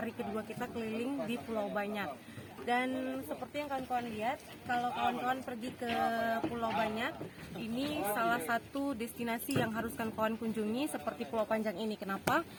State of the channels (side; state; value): both; identical; correlation 1.00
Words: kedua kita keliling di Pulau Banyak. Dan seperti yang kawan-kawan lihat, kalau kawan-kawan pergi ke Pulau Banyak, ini salah satu destinasi yang harus kawan-kawan kunjungi seperti Pulau Panjang ini. Kenapa?